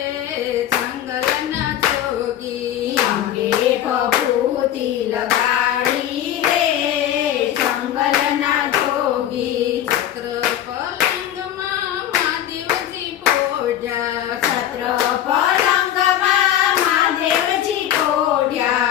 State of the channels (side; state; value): right; quieter; 11.5 dB